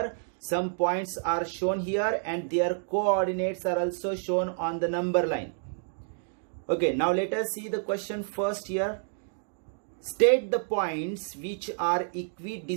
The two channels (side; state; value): left; silent; digital silence